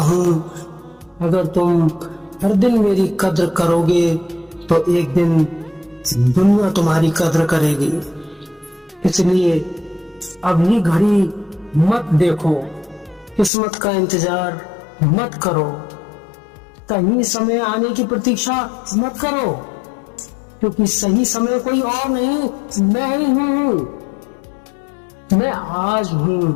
अगर तुम हर दिन मेरी कद्र करोगे तो एक दिन दुनिया तुम्हारी कद्र करेगी। इसलिए अभी घड़ी मत देखो, किस्मत का इंतजार मत करो, सही समय आने की प्रतीक्षा मत करो, क्योंकि सही समय कोई और नहीं, मैं ही हूं। मैं आज हूं,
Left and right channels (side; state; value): right; drops out; at 13.5 s